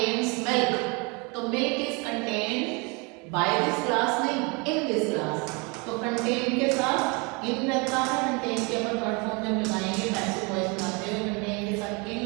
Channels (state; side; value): quieter; left; 30.2 dB